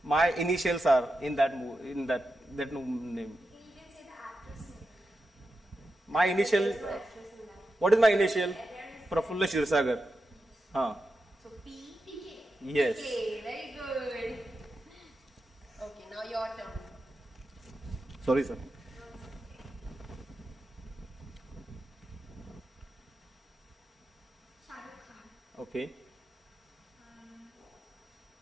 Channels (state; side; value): normal; both; correlation 0.89